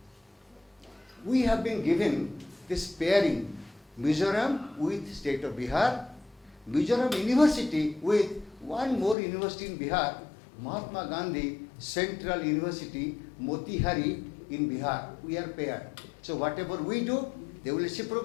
we have been given this pairing, Mizoram with state of Bihar, Mizoram University with one more university in Bihar, Mahatma Gandhi Central University, Motihari in Bihar. We are paired. So whatever we do, they will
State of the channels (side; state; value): right; drops out; at 9.2 s